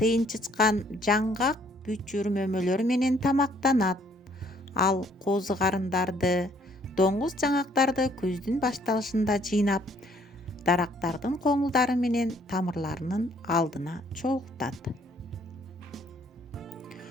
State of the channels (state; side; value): normal; both; correlation 0.63